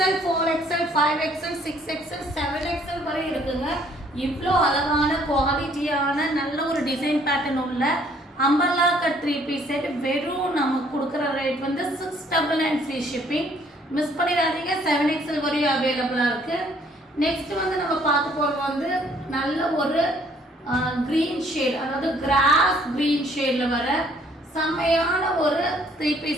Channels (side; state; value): both; normal; correlation 0.62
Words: 4XL, 5XL, 6XL, 7XL வரை இருக்குங்க. இவ்வளோ அழகான குவாலிட்டியான நல்ல ஒரு டிசைன் பேட்டர்ன் உள்ள அம்பர்லா கட் 3 பீஸ் செட் வெறும் நமக்கு கொடுக்குற ரேட் வந்து 699 ஃப்ரீ ஷிப்பிங். மிஸ் பண்ணிடாதீங்க. 7XL வரையும் அவைலபிளாக இருக்குது. நெக்ஸ்ட் வந்து நம்ம பார்க்க போகிறது வந்து நல்ல ஒரு க்ரீன் ஷேட், அதாவது கிராஸ் க்ரீன் ஷேடில் வர செம்மையான ஒரு 3